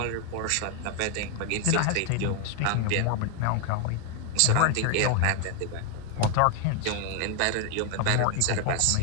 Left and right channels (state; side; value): different; both; correlation 0.00